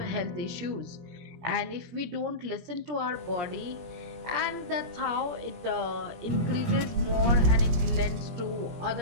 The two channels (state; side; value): late; left; 17 ms